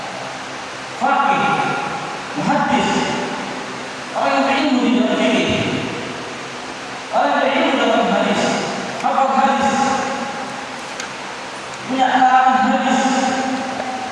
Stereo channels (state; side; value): identical; both; correlation 1.00